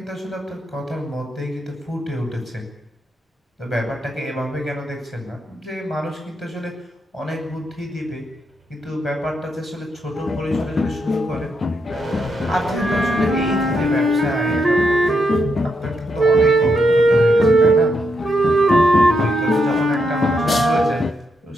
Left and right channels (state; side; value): normal; both; correlation 0.80